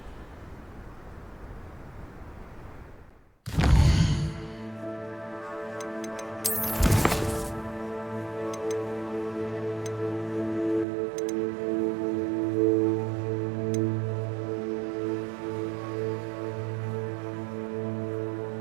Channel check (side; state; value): left; drops out; at 10.9 s